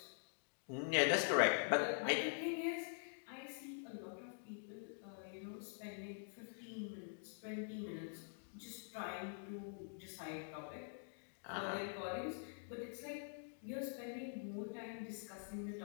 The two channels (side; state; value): right; silent; digital silence